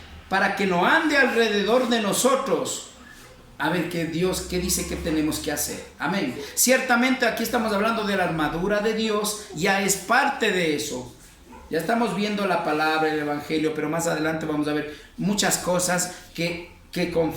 para que no ande alrededor de nosotros. A ver qué Dios, qué dice que tenemos que hacer. Amén. Ciertamente aquí estamos hablando de la armadura de Dios, ya es parte de eso. Ya estamos viendo la palabra, el evangelio, pero más adelante vamos a ver muchas cosas que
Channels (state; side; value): identical; both; correlation 1.00